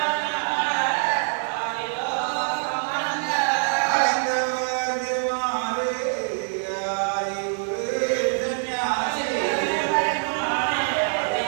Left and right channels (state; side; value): silent; left; digital silence